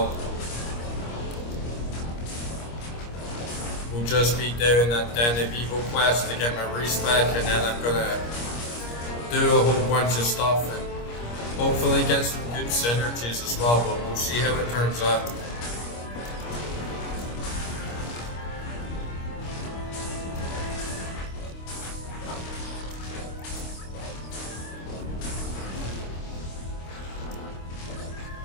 will just be doing that Den of Evil quest to get my respec, and then I'm gonna do a whole bunch of stuff and hopefully get some good synergies as well, but we'll see how it turns out.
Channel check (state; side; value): late; right; 25 ms